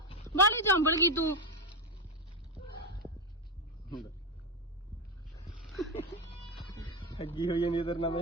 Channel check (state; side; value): normal; both; correlation 0.10